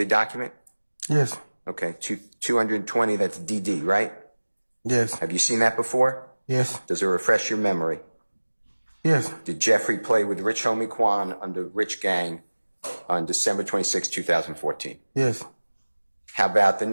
document? Yes. Okay, 220, that's DD, right? Yes. Have you seen that before? Yes. Does it refresh your memory? Yes. Did Jeffrey play with Rich Homie Quan under Rich Gang on December 26, 2014? Yes. How about the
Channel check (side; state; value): both; inverted; correlation -1.00